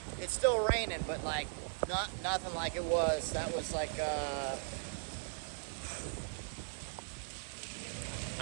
It's still raining, but like nothing like it was. That was like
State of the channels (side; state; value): left; silent; 52 dB below the other